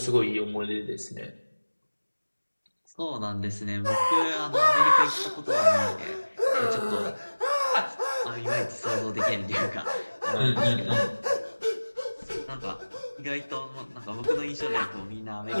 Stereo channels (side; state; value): both; inverted; correlation -1.00